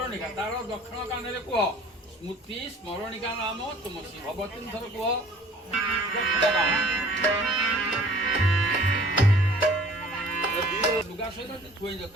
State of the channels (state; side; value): normal; both; correlation 0.51